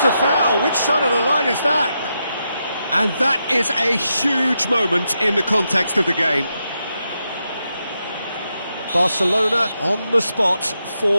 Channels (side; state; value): both; inverted; correlation -0.84